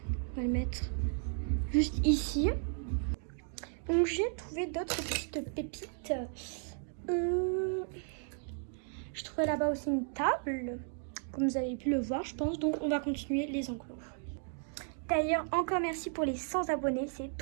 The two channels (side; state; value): left; silent; 55 dB below the other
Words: On va le mettre juste ici. Donc, j'ai trouvé d'autres petites pépites. Je trouvais là-bas aussi une table. Comme vous avez pu le voir, je pense. Donc, on va continuer les enclos. D'ailleurs, encore merci pour les 100 abonnés, c'est